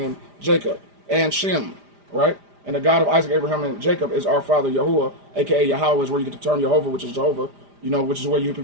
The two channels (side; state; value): left; late; 5.0 ms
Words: Jacob and Shem, right? And the God of Isaac, Abraham, and Jacob is our father Yahuwah, aka Yahweh, is where you get the term Jehovah, which is Jehovah, you know, which is where you hear